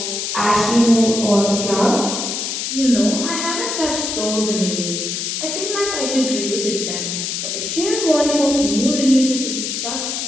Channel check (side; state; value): left; noise; hiss, 3 dB below the sound